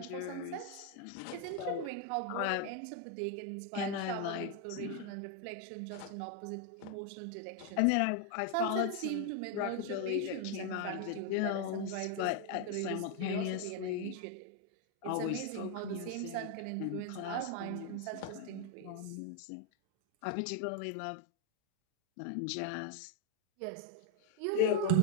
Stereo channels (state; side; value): different; both; correlation 0.01